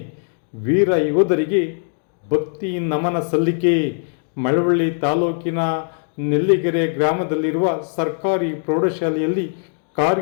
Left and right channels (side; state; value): right; silent; 63 dB below the other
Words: ವೀರ ಯೋಧರಿಗೆ ಭಕ್ತಿ ನಮನ ಸಲ್ಲಿಕೆ. ಮಳವಳ್ಳಿ ತಾಲೂಕಿನ ನೆಲ್ಲಿಗೆರೆ ಗ್ರಾಮದಲ್ಲಿರುವ ಸರ್ಕಾರಿ ಪ್ರೌಢಶಾಲೆಯಲ್ಲಿ